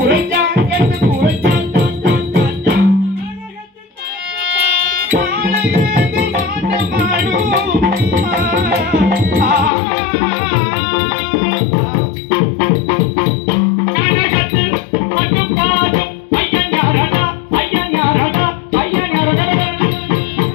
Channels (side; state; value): right; drops out; at 9.7 s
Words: எந்த குறைஞ்சா கனகத்தில் மட்டும் பாடும் ஐயன் யாரடா ஐயன் யாரடா ஐயன் யாரடா